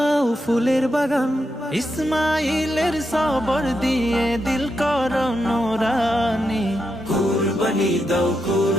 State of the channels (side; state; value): both; normal; correlation 0.84